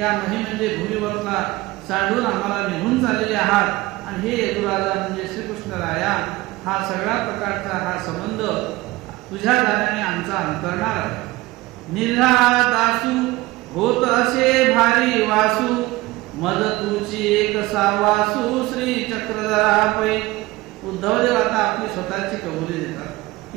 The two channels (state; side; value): quieter; left; 19.8 dB